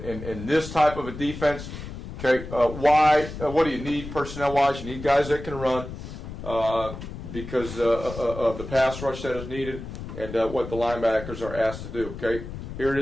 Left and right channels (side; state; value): left; noise; rumble, 10 dB below the sound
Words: this type of a defense, okay, what do you need personnel-wise? You need guys that can run because of the pass rush that is needed and what the linebackers are asked to do. Okay, here it